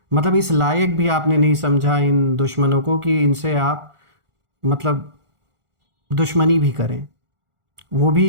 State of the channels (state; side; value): late; left; 1.4 ms